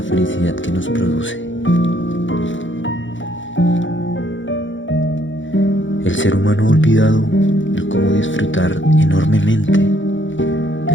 felicidad que nos produce. El ser humano ha olvidado el cómo disfrutar enormemente de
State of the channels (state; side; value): late; right; 0.55 ms